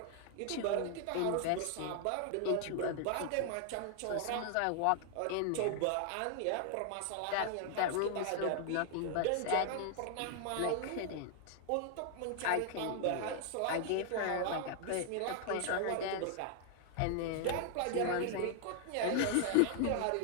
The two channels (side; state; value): both; different; correlation 0.00